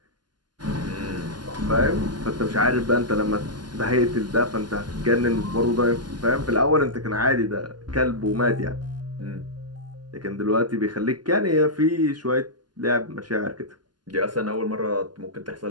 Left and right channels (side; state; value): left; late; 0.71 ms